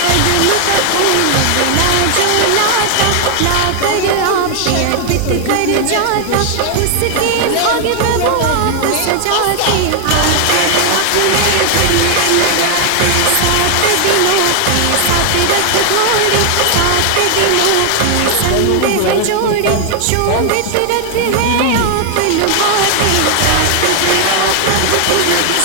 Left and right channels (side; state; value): both; different; correlation 0.00